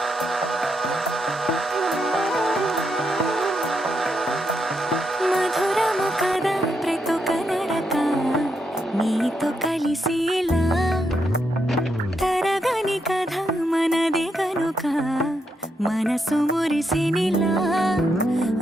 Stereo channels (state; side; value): normal; both; correlation 0.81